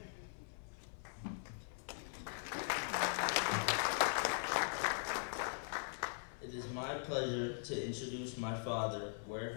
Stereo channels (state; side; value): silent; right; 50 dB below the other